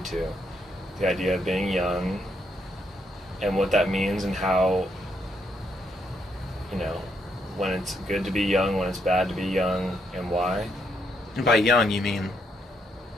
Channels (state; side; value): normal; both; correlation 0.76